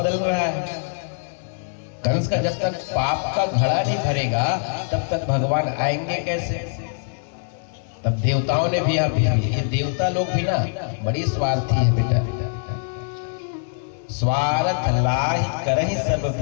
रहा है, कंस का जब तक पाप का घड़ा नहीं भरेगा तब तक भगवान आएंगे कैसे? तब देवताओं ने भी ये देवता लोग भी ना बड़ी स्वार्थी है बेटा, स्वार्थ लाहि करहि सब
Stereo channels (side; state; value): right; silent; digital silence